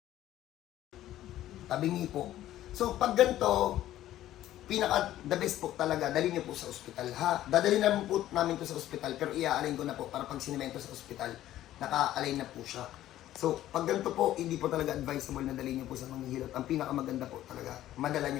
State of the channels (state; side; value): quieter; right; 13.5 dB